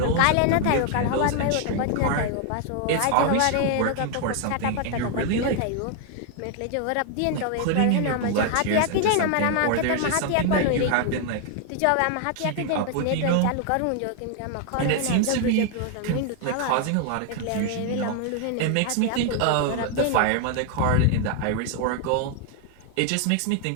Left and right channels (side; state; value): both; different; correlation 0.00